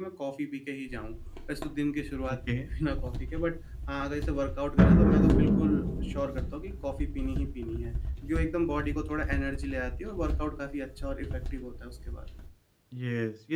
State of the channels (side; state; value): both; identical; correlation 1.00